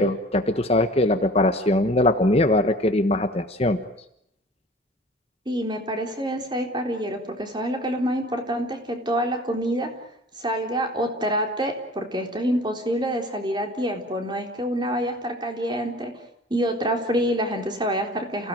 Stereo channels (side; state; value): both; normal; correlation 0.45